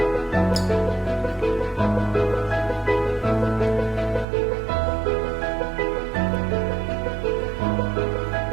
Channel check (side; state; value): left; drops out; at 4.2 s